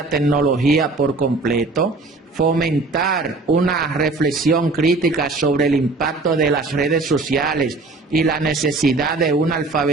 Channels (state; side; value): quieter; left; 3.5 dB